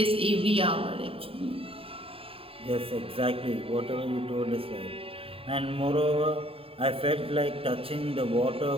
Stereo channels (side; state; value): left; late; 0.27 ms